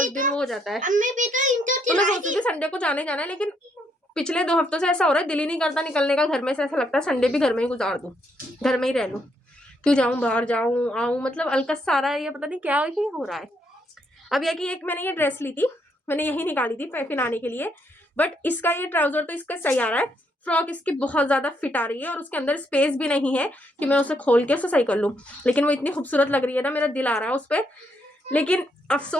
दिन वो हो जाता है। अम्मी भी तो इनको तो मैं सोचती थी संडे को जाने जाना है, लेकिन पिछले 2 हफ्तों से ऐसा हो रहा है, दिल ही नहीं करता निकलने का घर में से। ऐसा लगता है संडे भी घर में ही गुजार दूं, घर में ही रह लूं, क्यों जाऊं बाहर, जाऊं आऊं, मतलब अलकस सारा ये पता नहीं क्या ही हो रहा है। अब यह कि एक मैंने ये ड्रेस ली थी, मैंने यही निकाली थी पहनाने के लिए, बट इसका ये ट्राउजर तो इसका सही आ रहा है, फ्रॉक इसकी बहुत ज्यादा फिट आ रही है और उसके अंदर स्पेस भी नहीं है कि मैं उसे खोल के उसे सही कर लूं, लेकिन वो इतनी खूबसूरत लग रही है ना, मेरा दिल आ रहा है उस पर। लेकिन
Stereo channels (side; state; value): both; normal; correlation 0.74